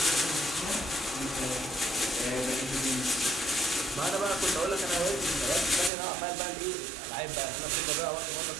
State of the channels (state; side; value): drops out; left; at 5.9 s